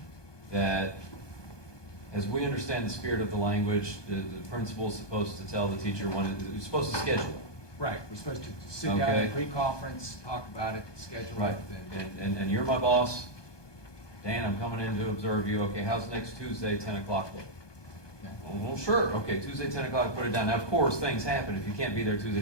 That, as we understand the spirit of the language, the principal's supposed to tell the teacher when it's supposed to schedule it. Right, we're supposed to sit down Okay. in pre-conference, talk about it, schedule Right, it. and you're my boss. Dan, I'm coming in to observe you. Okay, how's next Tuesday, 10 o'clock look? Well, sure, okay, Tuesday, 10 o'clock, put it down. Now, of course, things happen. If you can't be there Tuesday,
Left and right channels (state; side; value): late; right; 1.2 ms